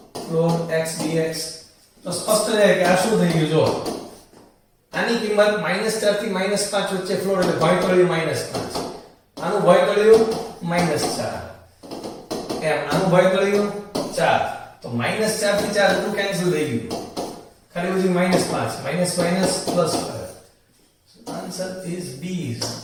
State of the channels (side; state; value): both; identical; correlation 1.00